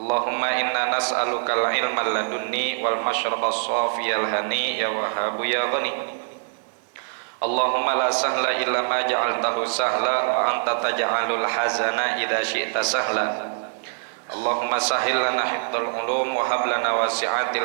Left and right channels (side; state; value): left; silent; digital silence